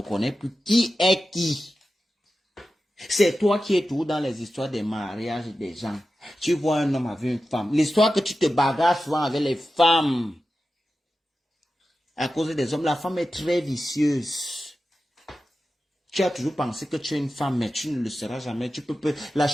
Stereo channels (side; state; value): both; normal; correlation 0.93